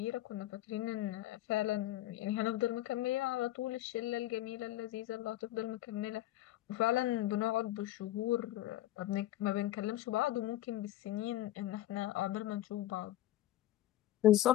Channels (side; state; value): right; quieter; 14.7 dB